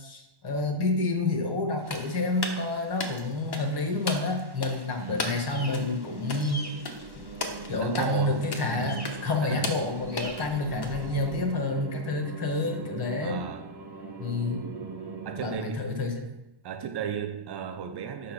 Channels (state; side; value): late; left; 1.1 ms